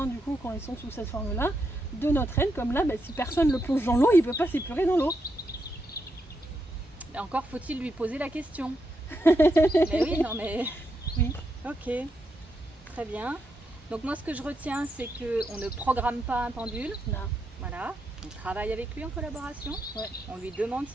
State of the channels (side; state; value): both; normal; correlation 0.82